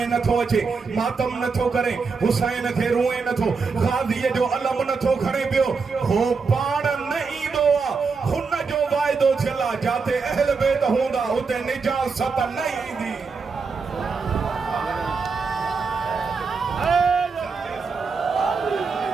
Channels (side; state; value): left; quieter; 4.9 dB